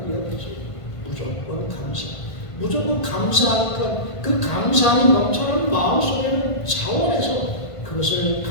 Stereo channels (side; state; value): right; late; 1.5 ms